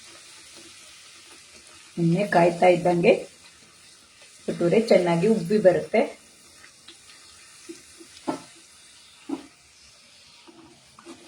ಎಣ್ಣೆ ಕಾಯ್ತಾ ಇದ್ದಂಗೆ ಭಟೂರೆ ಚೆನ್ನಾಗಿ ಉಬ್ಬಿ ಬರುತ್ತೆ.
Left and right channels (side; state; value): both; identical; correlation 1.00